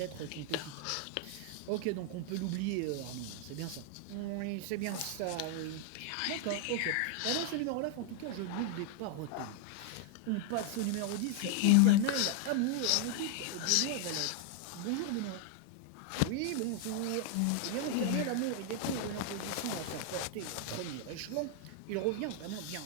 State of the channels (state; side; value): different; both; correlation 0.00